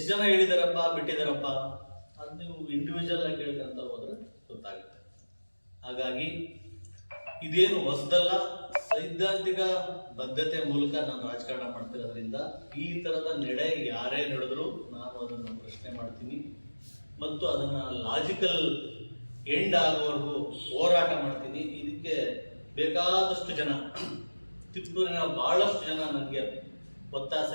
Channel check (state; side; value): inverted; both; correlation -1.00